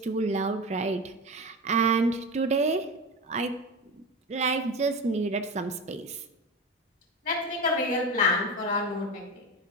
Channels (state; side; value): normal; both; correlation 0.24